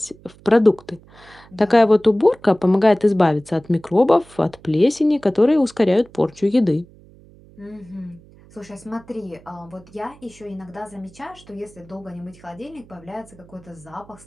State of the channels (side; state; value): right; noise; hum, 25 dB below the sound